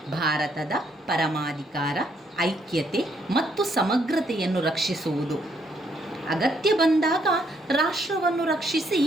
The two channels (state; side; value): normal; both; correlation 0.71